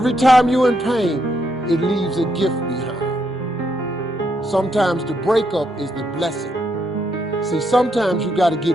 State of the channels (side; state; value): both; normal; correlation 0.77